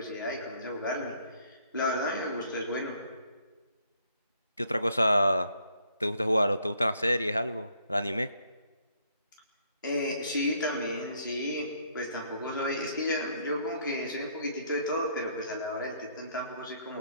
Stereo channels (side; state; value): both; inverted; correlation -0.67